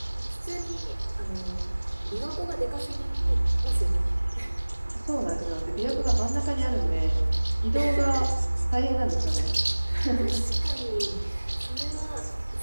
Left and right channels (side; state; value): both; inverted; correlation -1.00